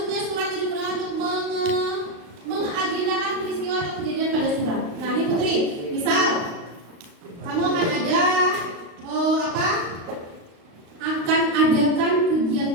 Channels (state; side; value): late; left; 35 ms